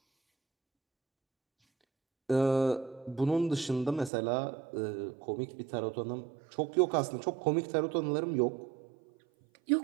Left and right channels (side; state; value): left; drops out; at 4.1 s